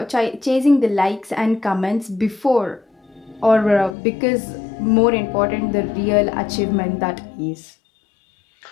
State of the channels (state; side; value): drops out; right; at 4.0 s